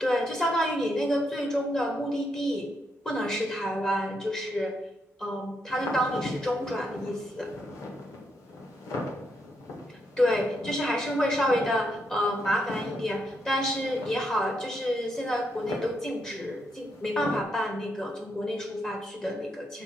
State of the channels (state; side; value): normal; both; correlation 0.79